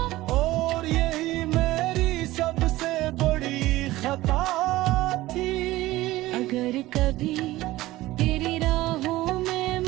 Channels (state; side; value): quieter; left; 17.4 dB